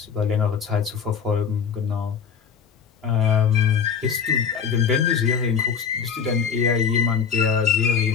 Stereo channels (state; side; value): quieter; right; 6.9 dB